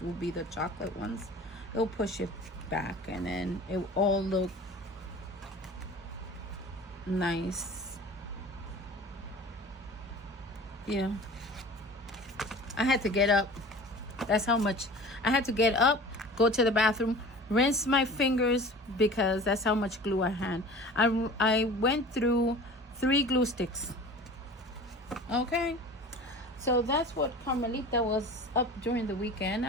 will be the chocolate ones. It'll push it back, and then it will all look nice. Yeah, I had to get up. That's how much I had to get up, go to the bathroom, rinse my fingers, because that's how much glue I had. I went through 3 glue sticks. Okay, so that's what Carmelita was up during the weekend.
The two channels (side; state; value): both; normal; correlation 0.40